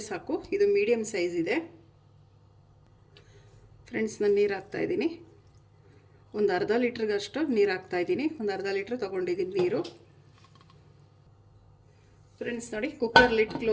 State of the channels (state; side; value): identical; both; correlation 1.00